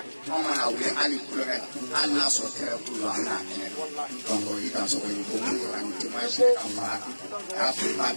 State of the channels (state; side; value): inverted; both; correlation -1.00